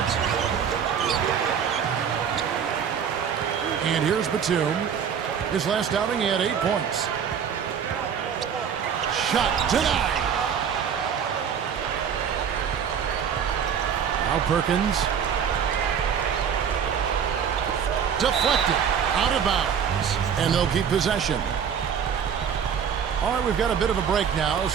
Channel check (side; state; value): left; quieter; 7.6 dB